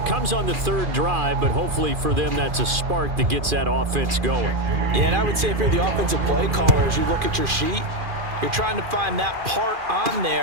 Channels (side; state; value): left; late; 2.4 ms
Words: comes on the third drive, but hopefully for them that's a spark that gets that offense going. Yeah, and I would say if you're the offensive play caller, as you look at your sheet, you're trying to find that part on